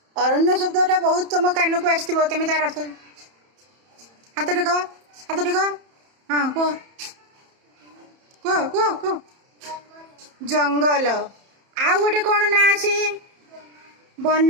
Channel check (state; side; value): late; left; 31 ms